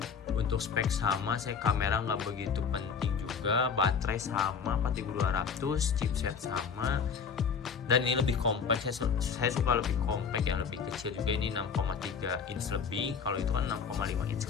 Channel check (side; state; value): right; quieter; 6.2 dB